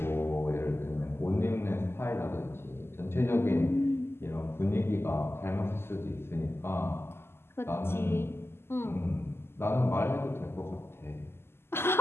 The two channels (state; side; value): late; right; 0.12 ms